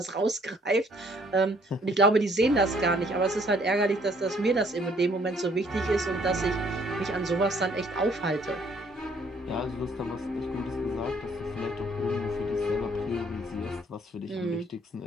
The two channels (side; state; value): both; normal; correlation 0.63